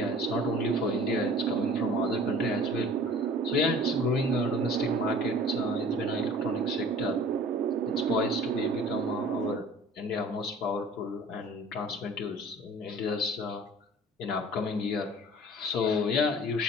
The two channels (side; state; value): both; normal; correlation 0.46